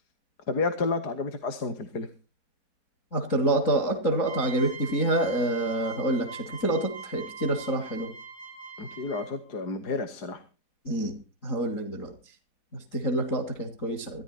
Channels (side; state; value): right; late; 3.9 ms